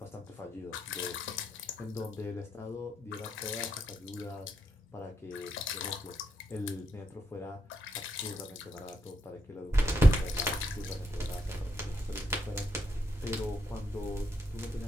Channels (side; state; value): both; normal; correlation 0.80